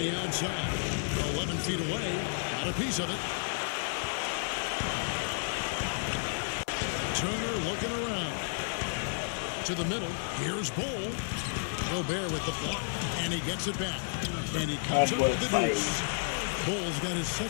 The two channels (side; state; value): right; silent; digital silence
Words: outside. 11 feet away. Got a piece of it. Turner looking around. To the middle. Here's Bol. Gobert with the block. And he gets it back. And he comes up with the deuce. Bol's got his